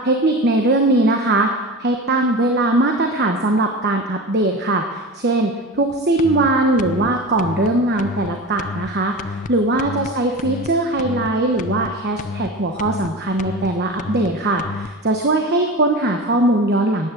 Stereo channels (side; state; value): both; normal; correlation 0.30